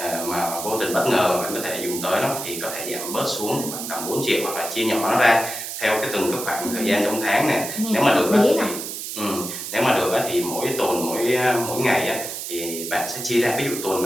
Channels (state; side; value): noise; right; hiss, 7 dB below the sound